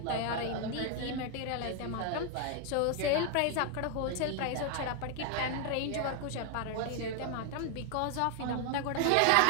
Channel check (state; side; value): different; both; correlation 0.00